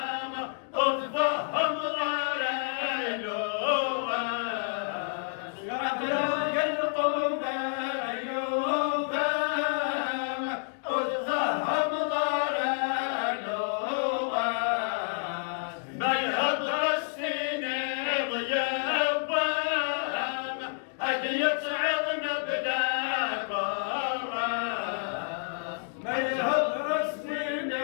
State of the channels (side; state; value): right; silent; digital silence